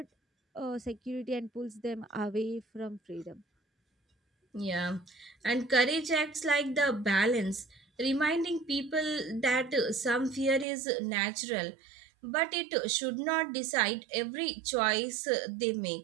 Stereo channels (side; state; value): left; drops out; at 10.7 s